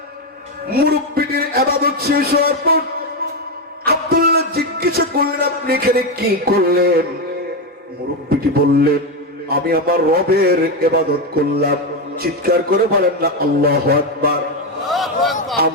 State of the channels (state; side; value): normal; both; correlation 0.09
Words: মুরব্বিটির ইবাদত শেষ হওয়ার পর আব্দুল্লাহ জিজ্ঞাসা করলেন, আপনি এখানে কি করলেন? মুরব্বিটি বললেন, আমি আমার রবের ইবাদত করলাম। চিৎকার করে বলেন না আল্লাহু আকবার।